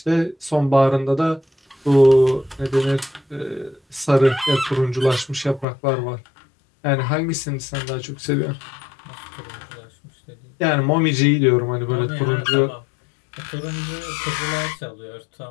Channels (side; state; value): right; drops out; at 5.7 s